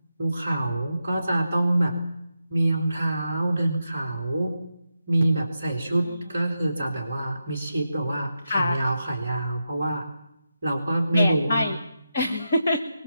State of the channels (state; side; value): inverted; both; correlation -0.87